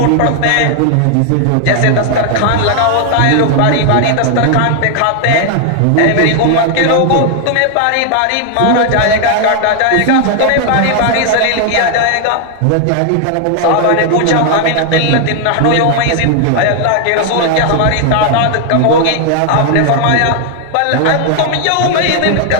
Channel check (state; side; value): different; both; correlation 0.00